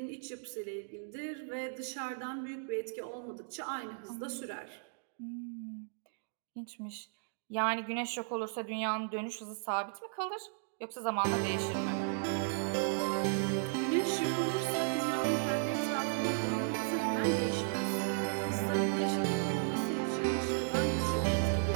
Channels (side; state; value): left; silent; digital silence